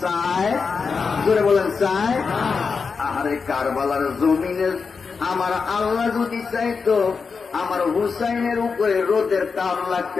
চায়, জোরে বলেন চায়। আহারে কারবালার জমিনে আমার আল্লাহ যদি চাইতো আমার হুসাইনের উপরে রোদের তাপ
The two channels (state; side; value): quieter; right; 5.2 dB